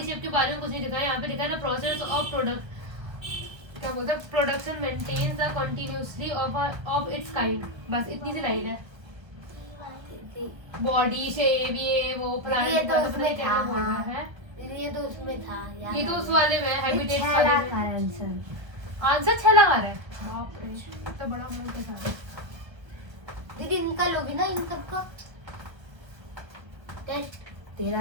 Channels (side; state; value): left; late; 1.1 ms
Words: के बारे में कुछ नहीं लिखा है यहाँ पे लिखा है ना प्रोसेस ऑफ प्रोडक्ट क्या बोलते हैं production maintains the continuously of its kind बस इतनी सी लाइन है बॉडी शेप ये वो प्लांट ये तो का उसमें क्या था, बोल रहा है ये तो उसमें था यार ये तो उस वाले में हैबिटेट छह वाले लाख में का आंसर आंसर 6 लगा रहा है बाप रे इतना बड़ा मुंह के साथ दीदी इनका लोगी ना इन सबका टेस्ट